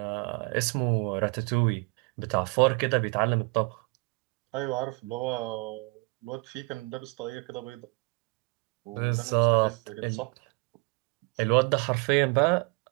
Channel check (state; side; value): quieter; left; 30.0 dB